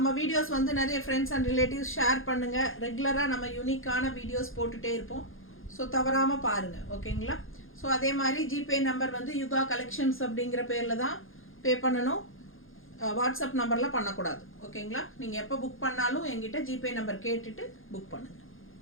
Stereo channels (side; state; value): right; late; 0.60 ms